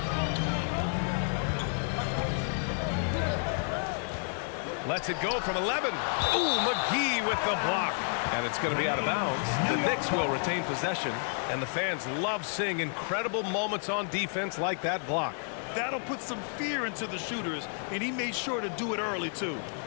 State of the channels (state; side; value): silent; right; 55 dB below the other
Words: Lets it go from 11. Ooh, McGee with the block. And it's going to be out of bounds. The Knicks will retain possession, and the fans love seeing incredible moments on defense like that block. That'll put some fear into the shooters, and he made sure to do it early, too.